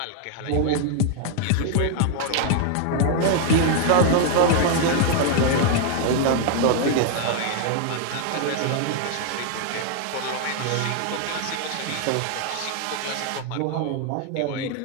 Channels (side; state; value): both; different; correlation 0.00